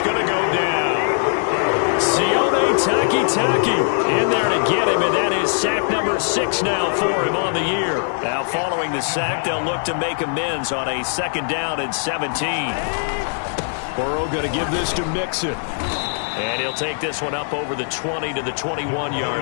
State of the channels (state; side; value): silent; right; digital silence